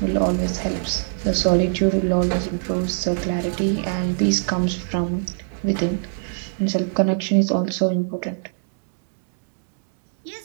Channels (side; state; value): left; silent; digital silence